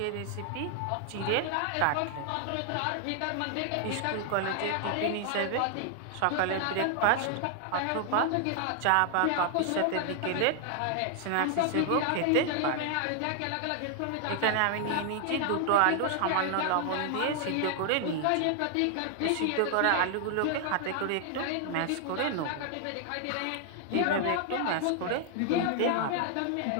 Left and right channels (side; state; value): both; different; correlation 0.00